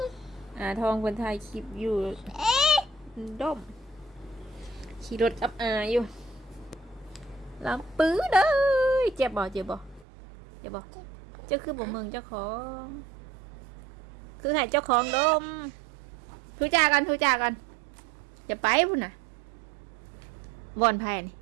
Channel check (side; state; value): left; drops out; at 10.1 s